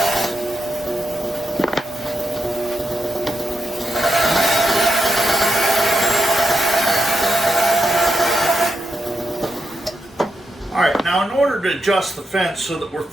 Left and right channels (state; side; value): normal; both; correlation 0.85